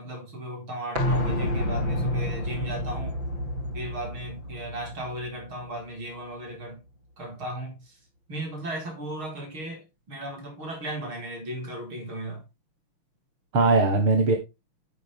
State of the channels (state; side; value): late; left; 6.4 ms